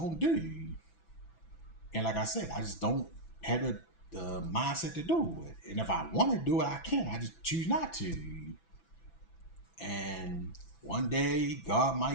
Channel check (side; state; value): right; late; 6.0 ms